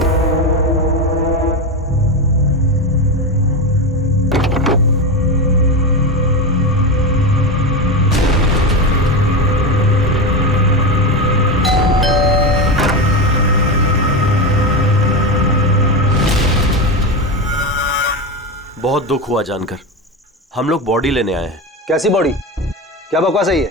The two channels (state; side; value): normal; both; correlation 0.17